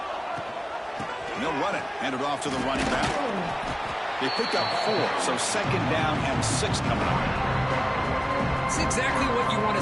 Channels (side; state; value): both; identical; correlation 1.00